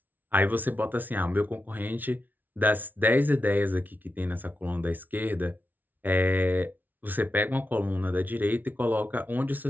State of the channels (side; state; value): left; late; 0.083 ms